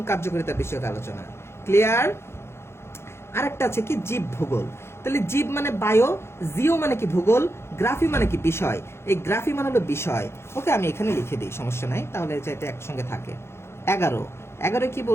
কার্যকারিতা বিষয়ক আলোচনা। ক্লিয়ার? আরেকটা আছে কি জীব ভূগোল। তাহলে জীব মানে বায়ো, জিও মানে কি ভূগোল, গ্রাফি মানে কি বিষয়। এই গ্রাফি মানে হলো বিষয়। ওকে, আমি এখানে লিখে দিই, সমস্যা নাই, তাহলে যাতে একসঙ্গে থাকে। 11 11 কি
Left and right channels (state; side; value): late; right; 0.12 ms